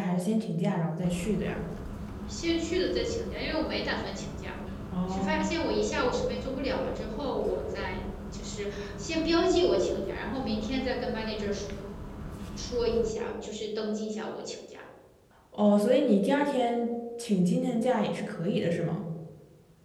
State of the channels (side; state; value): both; identical; correlation 1.00